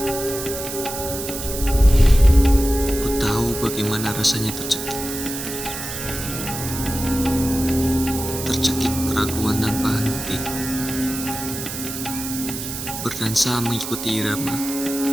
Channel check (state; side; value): noise; right; hiss, 7 dB below the sound